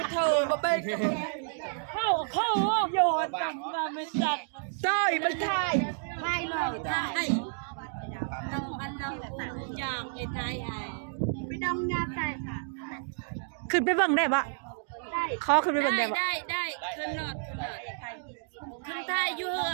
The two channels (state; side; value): silent; left; digital silence